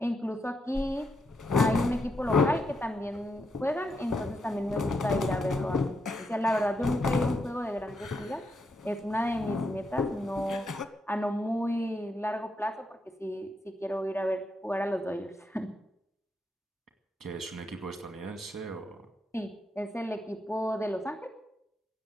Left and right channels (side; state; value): both; normal; correlation 0.81